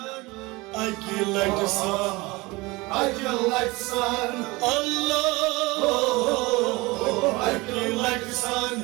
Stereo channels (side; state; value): left; quieter; 23.2 dB